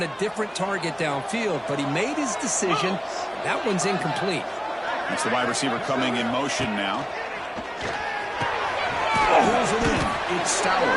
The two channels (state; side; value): identical; both; correlation 1.00